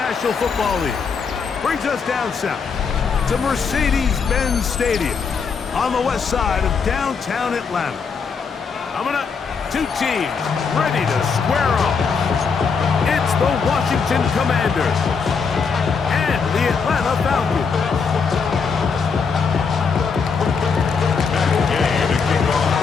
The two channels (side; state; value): right; quieter; 5.6 dB